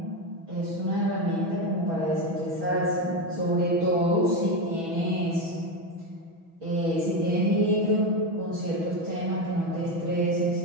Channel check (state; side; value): late; left; 6.1 ms